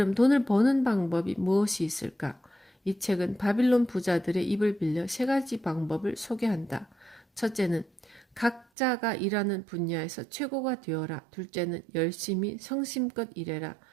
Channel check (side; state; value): left; drops out; at 8.7 s